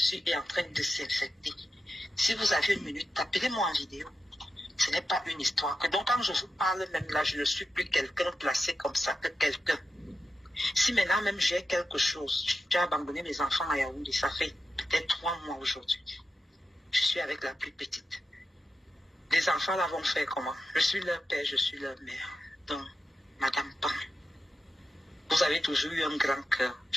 est en train de s'infecter. Si vous avez une minute, appelez-moi en vidéo. Ce n'est pas une histoire. Donc quand je vous parle même là, je ne suis plus quelqu'un placé comme ça que quelqu'un. Si maintenant même j'ai quelque chose, j'ai abandonné mes enfants à Yaoundé, ça fait peut-être 3 mois aujourd'hui. Je suis avec la plus petite. Les enfants là vont faire comment? Je suis leur père, je suis leur mère. Donc, Madame Pan, vous avez toujours eu un grand cœur.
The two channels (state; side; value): normal; both; correlation 0.90